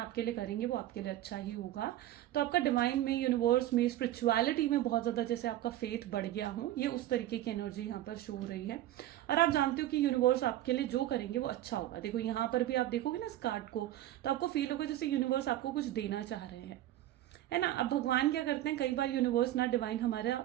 लिए करेंगे वो आपके लिए अच्छा ही होगा। तो आपका डिवाइन में, यूनिवर्स में, स्पिरिचुअलिटी में बहुत ज़्यादा जैसे आपका फेथ बढ़ गया हो, ये उस तरीके की एनर्जी यहाँ पर शो हो रही है। और आप जानते हो कि यूनिवर्स आपके लिए जो करेंगे वो अच्छा होगा। देखो यहाँ पर भी आप देखोगे ना इस कार्ड को, तो आपको फील होगा जैसे यूनिवर्स आपको कुछ देना चाह रहे हैं, है ना। अब भगवान क्या करते हैं, कई बार यूनिवर्स ना डिवाइन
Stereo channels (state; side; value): quieter; left; 13.9 dB